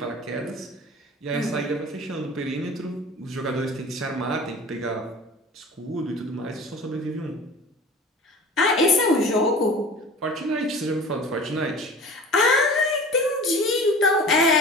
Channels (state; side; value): normal; both; correlation 0.40